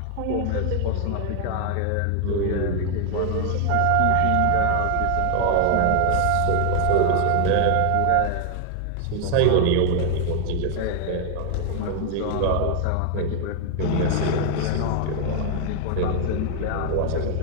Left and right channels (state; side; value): different; both; correlation 0.00